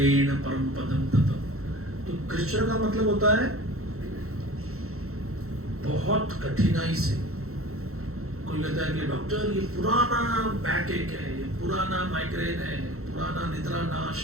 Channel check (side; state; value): left; late; 0.63 ms